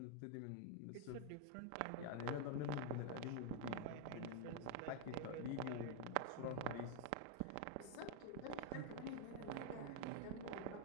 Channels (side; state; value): both; different; correlation 0.00